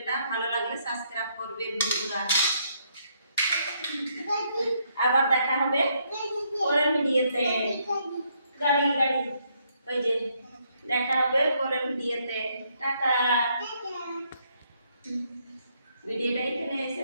ভালো লাগলে সাবস্ক্রাইব করবেন বন্ধুরা। আবার দেখা হবে পরের ভিডিওতে। গাড়ি গাড়ি, ওই যে দেখা হবে পরের ভিডিওতে। টাটা। ভিডিওটা এখানে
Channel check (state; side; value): inverted; both; correlation -0.73